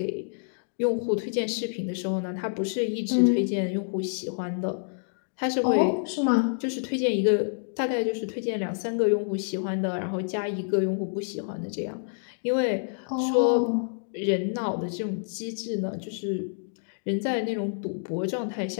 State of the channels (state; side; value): silent; right; digital silence